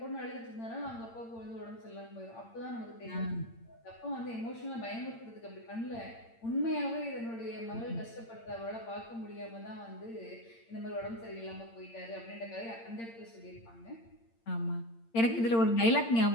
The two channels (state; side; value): late; right; 8.8 ms